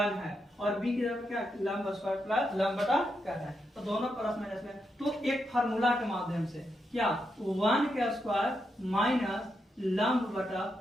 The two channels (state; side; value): normal; both; correlation 0.83